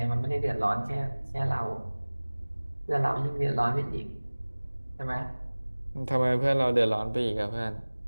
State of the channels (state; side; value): inverted; both; correlation -1.00